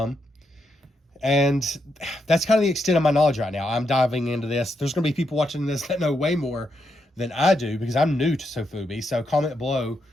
And that's kind of the extent of my knowledge right now. I'm diving into this. There's going to be people watching this that know way more than I do because I'm new to Sofubi. So comment below,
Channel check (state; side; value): normal; both; correlation 0.81